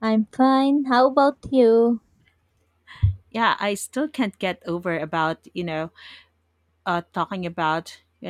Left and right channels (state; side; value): identical; both; correlation 1.00